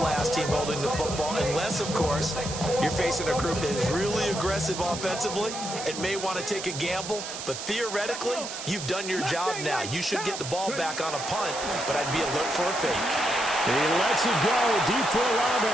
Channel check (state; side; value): noise; right; hiss, 8 dB below the sound